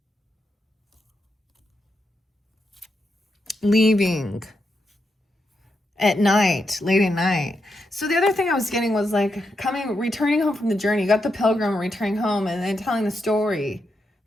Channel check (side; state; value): both; normal; correlation 0.84